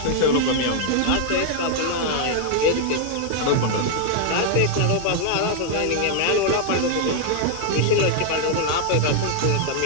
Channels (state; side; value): different; both; correlation 0.00